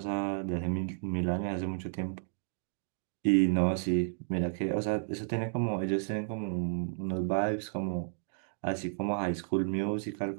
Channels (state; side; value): silent; left; digital silence